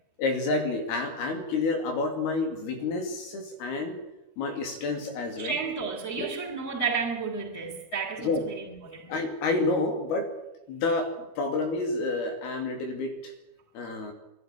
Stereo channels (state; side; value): late; right; 13 ms